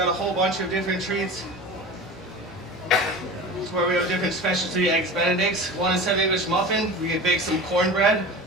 a whole bunch of different treats. Where we have different specialty Eggs Benedicts. One is English muffin. We can bake some cornbread.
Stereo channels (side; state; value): both; normal; correlation 0.33